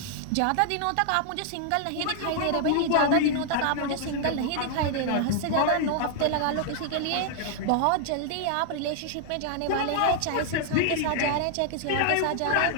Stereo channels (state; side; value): different; both; correlation 0.00